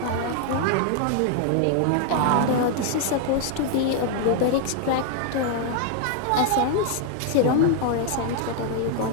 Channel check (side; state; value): both; different; correlation 0.00